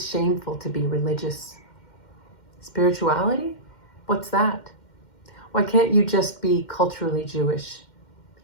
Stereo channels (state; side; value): late; right; 2.1 ms